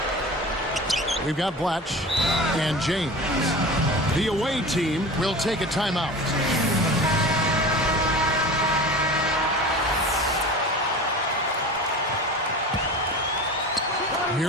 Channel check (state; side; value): normal; both; correlation 0.34